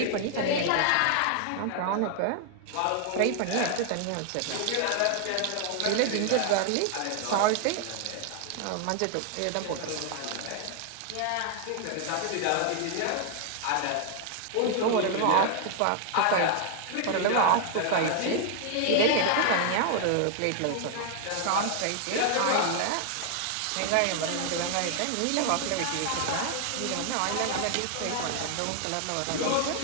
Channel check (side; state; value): both; different; correlation 0.00